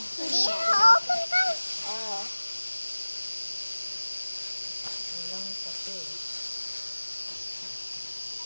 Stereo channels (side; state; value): both; inverted; correlation -1.00